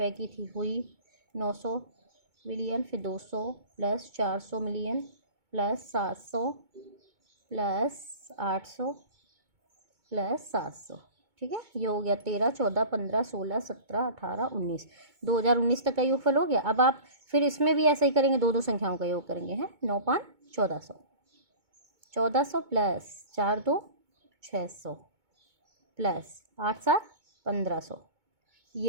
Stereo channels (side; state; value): left; late; 2.2 ms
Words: की थी, हुई 900 मिलियन, फिर 200 plus 400 million plus 700 plus 800 plus 700। ठीक है, ये हो गया 13 14 15 16 17 18 19, 2019 तक का योगफल हो गया। अब आप फिर इसमें भी ऐसा ही करेंगे, दो संख्याओं का योग करेंगे, हैं 9 5 1400, 1400 प्लस 4 2 600 प्लस 8 7 1500,